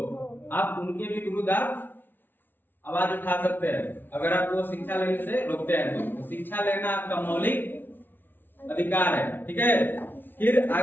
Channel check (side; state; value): right; late; 0.095 ms